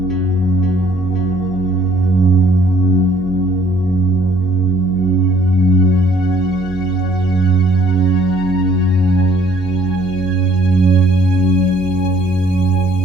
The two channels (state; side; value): noise; right; hum, 16 dB below the sound